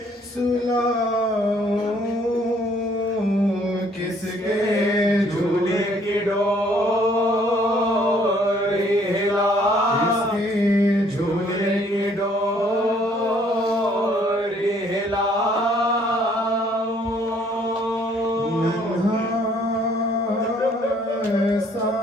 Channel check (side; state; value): both; normal; correlation 0.62